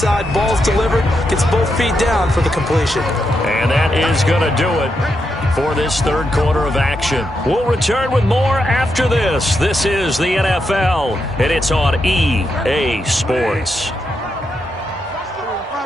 ball's delivered, gets both feet down for the completion. And that is going to do it for this 3rd quarter of action. We'll return with more after this. This is the NFL, and it's on EA Sports.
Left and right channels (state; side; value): normal; both; correlation 0.83